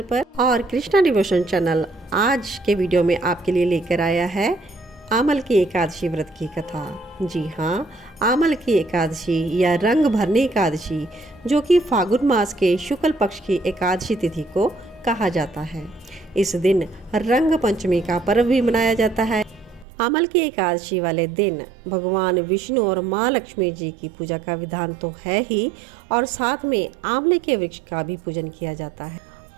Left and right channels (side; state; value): left; drops out; at 19.9 s